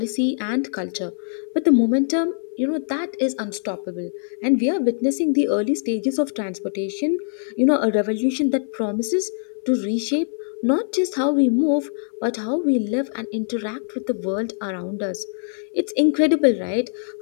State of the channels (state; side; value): silent; right; digital silence